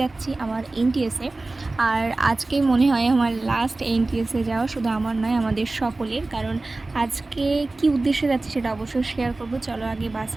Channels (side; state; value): left; quieter; 3.1 dB